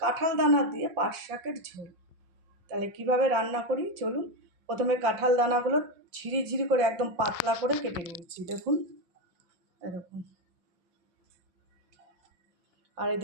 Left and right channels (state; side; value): late; left; 5.7 ms